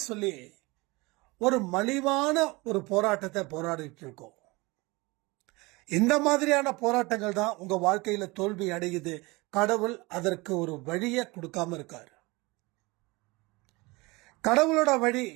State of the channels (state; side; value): quieter; left; 23.9 dB